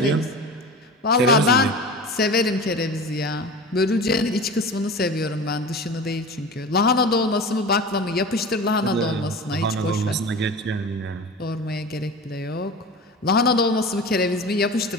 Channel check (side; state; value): both; normal; correlation 0.33